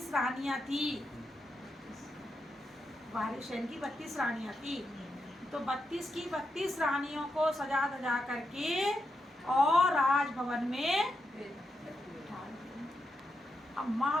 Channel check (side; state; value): both; normal; correlation 0.85